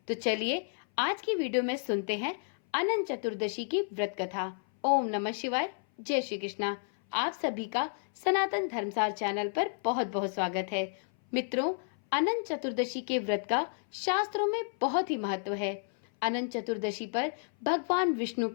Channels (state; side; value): silent; right; 57 dB below the other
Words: तो चलिए आज की वीडियो में सुनते हैं अनंत चतुर्दशी की व्रत कथा। ओम नमः शिवाय। जय श्री कृष्णा। आप सभी का सनातन धर्मसार चैनल पर बहुत बहुत स्वागत है। मित्रों, अनंत चतुर्दशी के व्रत का शास्त्रों में बहुत ही महत्व है। अनंत चतुर्दशी पर भगवान विष्णु